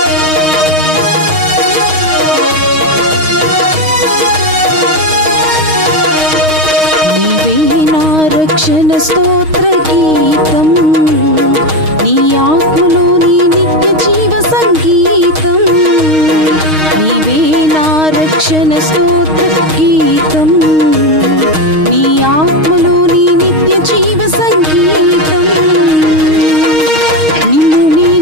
స్తోత్ర గీతం నీ ఆత్మలోని నిత్య జీవ సంగీతం, నీవే నా రక్షణ స్తోత్ర గీతం, నీ ఆత్మలోని నిత్య జీవ సంగీతం. నిన్ను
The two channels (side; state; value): left; late; 6.4 ms